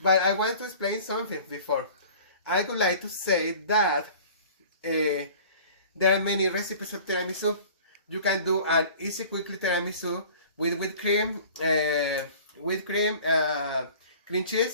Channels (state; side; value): inverted; both; correlation -0.45